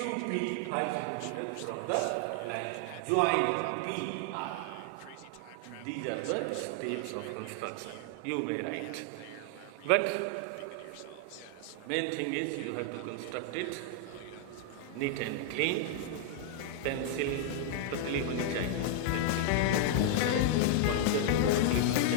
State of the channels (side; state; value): both; different; correlation 0.00